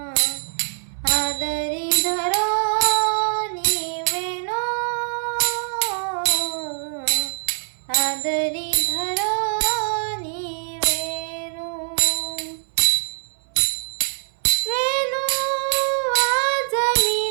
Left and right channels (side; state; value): left; silent; 62 dB below the other